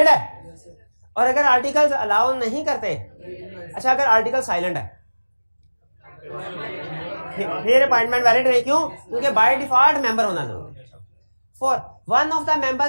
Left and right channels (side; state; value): both; inverted; correlation -1.00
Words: है। और अगर आर्टिकल्स अलाउ नहीं करते, अच्छा अगर आर्टिकल साइलेंट है फिर अपॉइंटमेंट वैलिड नहीं। क्यों? क्योंकि बाय डिफॉल्ट मेंबर होना जरूरी। Four, one of the